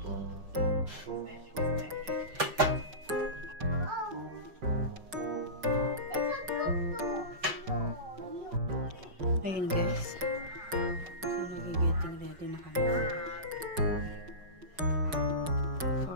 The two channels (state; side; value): late; left; 5.4 ms